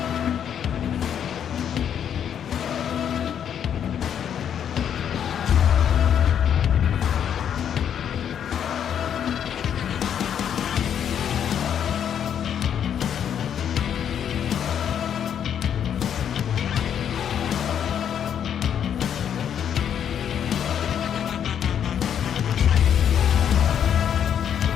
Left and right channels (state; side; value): quieter; right; 8.9 dB